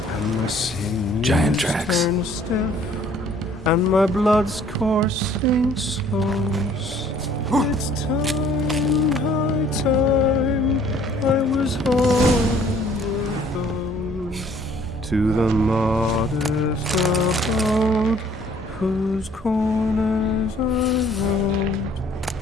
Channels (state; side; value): normal; both; correlation 0.58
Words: and my sinews Giant tracks. turn stiff, and my blood's coursing slows. It's time, high time, I was homeward bound, to the modest abode, whose corners I roamed.